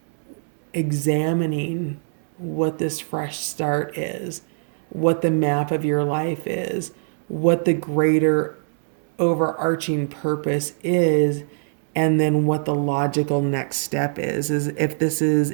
examining what this fresh start is, what the map of your life is, what the greater overarching purpose is, and then what the logical next step is if this is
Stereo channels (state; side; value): silent; left; digital silence